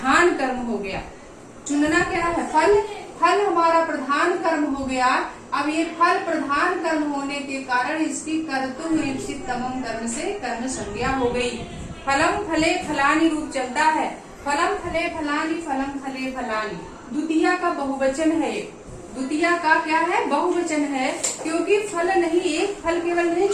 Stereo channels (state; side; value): identical; both; correlation 1.00